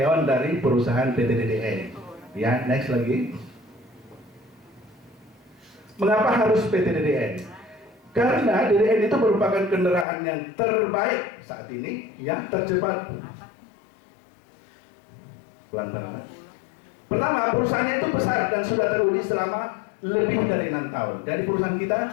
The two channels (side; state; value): right; drops out; at 10.1 s